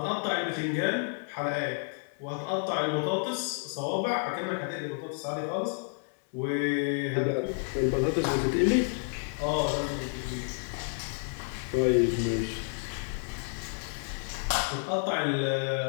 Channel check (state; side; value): silent; right; 56 dB below the other